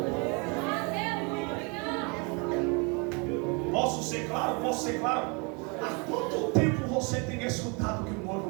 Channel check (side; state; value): left; quieter; 32.0 dB